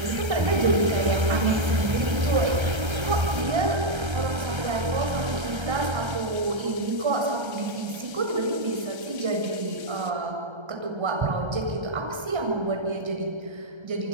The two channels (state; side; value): late; left; 1.3 ms